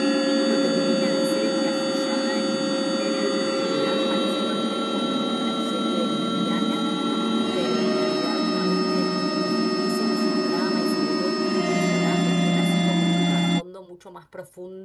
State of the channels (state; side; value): identical; both; correlation 1.00